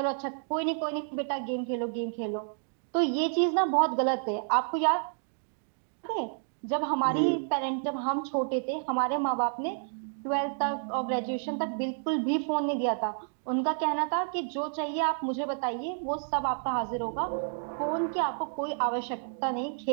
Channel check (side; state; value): left; silent; digital silence